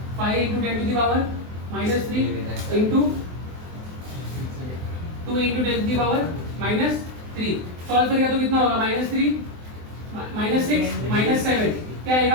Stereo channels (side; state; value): left; late; 23 ms